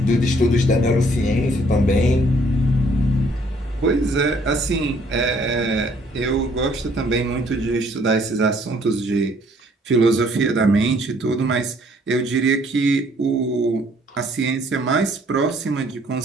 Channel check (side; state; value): both; normal; correlation 0.63